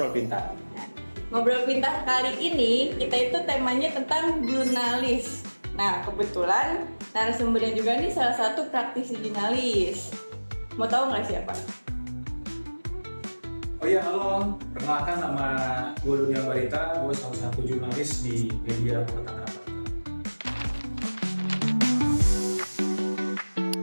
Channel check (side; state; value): both; inverted; correlation -1.00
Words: pintar. Nah, ngobrol pintar kali ini kita itu temanya tentang jurnalis. Nah, kebetulan narasumbernya juga nih salah satu praktisi jurnalis. Mau tahu nggak siapa? Oh iya, halo. Perkenalkan, nama gue Dunia Barita. Gue salah satu jurnalis di media Kota Tangerang.